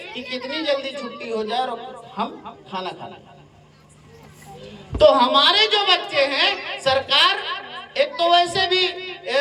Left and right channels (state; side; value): identical; both; correlation 1.00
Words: कि कितनी जल्दी छुट्टी हो जाए और हम खाना खाना। तो हमारे जो बच्चे हैं, सरकार एक तो वैसे भी